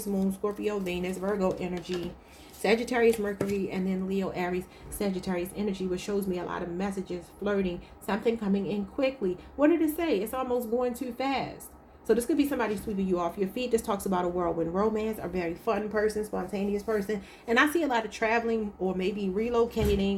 Moon, Scorpio, Venus, Virgo energy, Sagittarius, Mercury, and then Leo, Aries, Sagittarius energy, which shows me a lot of messages, flirting, something coming in quickly. What did it say? It's almost going too fast. So this could be somebody sweeping you off your feet. This talks about a whirlwind romance, a very fun person, spontaneous person. And I see a lot of traveling or maybe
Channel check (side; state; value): both; identical; correlation 1.00